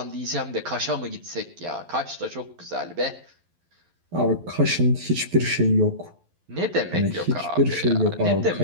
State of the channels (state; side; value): late; left; 11 ms